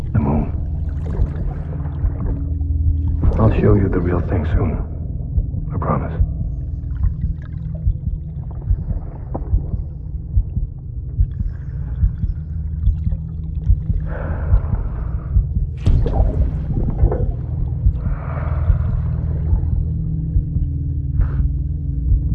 The moon. I'll show you the real thing soon. I promise.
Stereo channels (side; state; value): both; identical; correlation 1.00